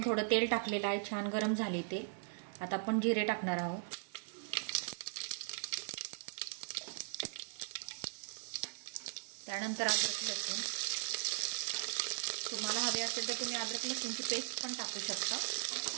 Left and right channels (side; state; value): left; silent; digital silence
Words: थोडं तेल टाकलेलं आहे, छान गरम झाले ते। आता आपण जिरे टाकणार आहोत। त्यानंतर अद्रक लसूण, तुम्हाला हवे असेल तर तुम्ही अद्रक लसूणची पेस्ट पण टाकू शकता,